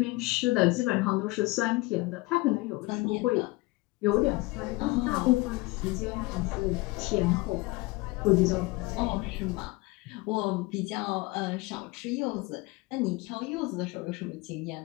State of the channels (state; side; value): quieter; right; 22.5 dB